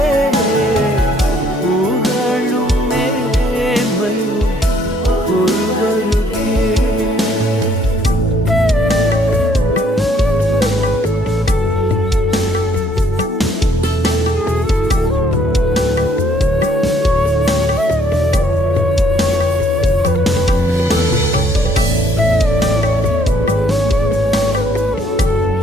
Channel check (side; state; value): both; normal; correlation 0.65